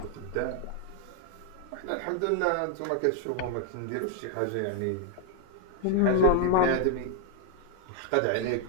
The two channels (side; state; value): both; different; correlation 0.00